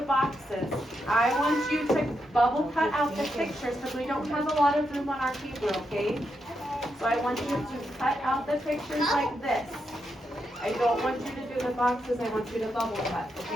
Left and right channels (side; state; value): both; normal; correlation 0.83